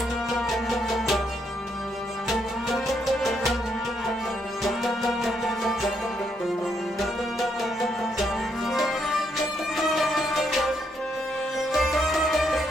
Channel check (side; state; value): both; normal; correlation 0.76